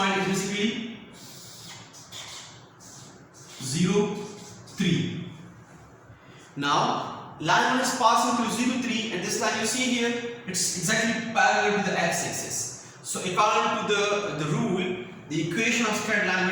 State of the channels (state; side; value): identical; both; correlation 1.00